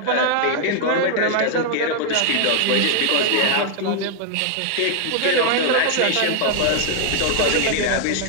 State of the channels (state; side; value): different; both; correlation 0.00